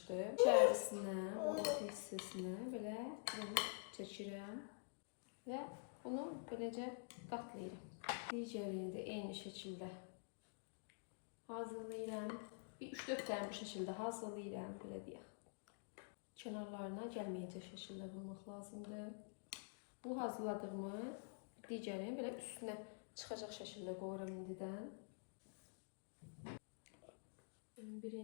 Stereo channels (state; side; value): silent; right; digital silence